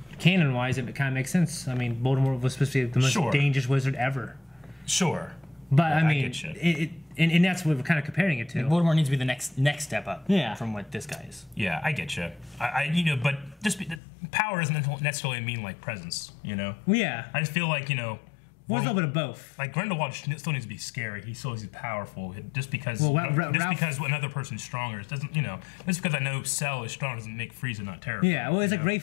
canon-wise, it kind of makes sense. I mean, Voldemort was supposed to be the most dangerous wizard ever. Sure. But, I mean, and that's what we're kind of comparing it to. Voldemort needs to be the next step up from what this guy is. Yeah, I get you. But just power doesn't necessarily mean, like, presence, you know? Yeah. I just feel like, well, it's a little bit of both. Like, Grindelwald still needs to be scary. He still needs to be powerful. Just because because another person's stronger, it doesn't, just because I know Cell is strong doesn't make Frieza not terrible. Yeah, well, it's like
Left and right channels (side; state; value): right; drops out; at 14.0 s